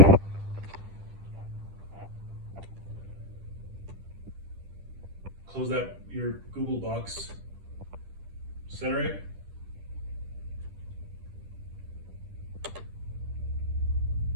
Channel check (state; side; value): late; left; 10 ms